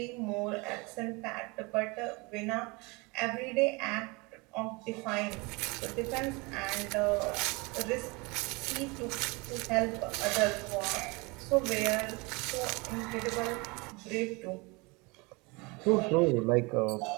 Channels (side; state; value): left; quieter; 26.9 dB